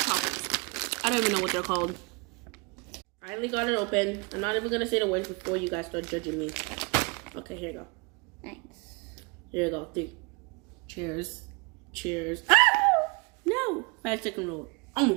toppers. I don't even know what they're called. Finally got it open. I'm not even gonna say the words before you guys start judging me. Okay, here you go. Thanks. Here you go. 3. Cheers. Cheers. Ah! No. 5-second rule.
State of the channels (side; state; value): left; quieter; 29.2 dB